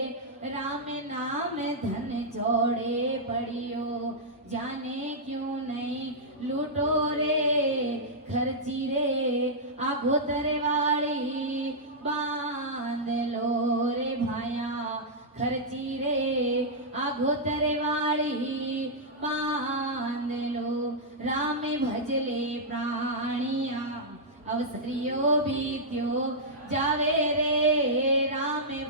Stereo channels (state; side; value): normal; both; correlation -0.09